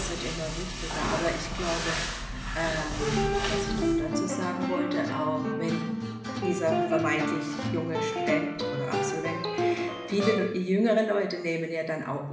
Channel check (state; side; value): identical; both; correlation 1.00